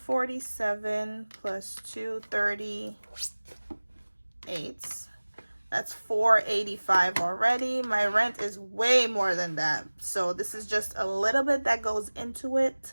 plus 238. That's 485 already. My rent is way more than that. So this is just a little bit that goes into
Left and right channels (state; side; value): inverted; both; correlation -1.00